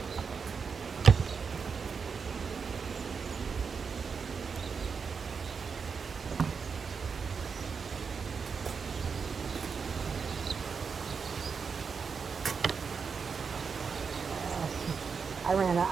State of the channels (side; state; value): left; quieter; 5.7 dB